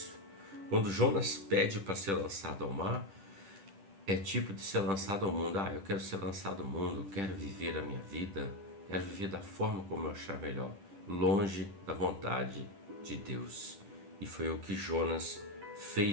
Quando Jonas pede para ser lançado ao mar, é tipo de ser lançado ao mundo. Eu quero ser lançado ao mundo, quero viver a minha vida, quero viver da forma como eu achar melhor, longe da vontade de Deus. E foi o que Jonas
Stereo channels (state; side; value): late; left; 10 ms